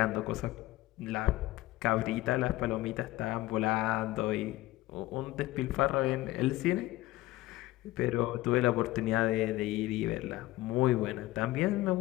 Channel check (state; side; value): quieter; right; 17.4 dB